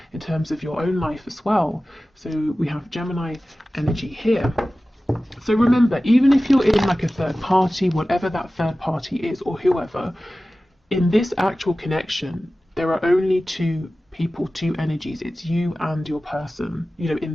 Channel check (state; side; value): normal; both; correlation 0.96